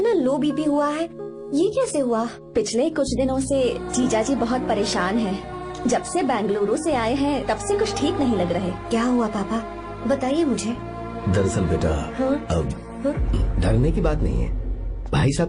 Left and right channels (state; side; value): identical; both; correlation 1.00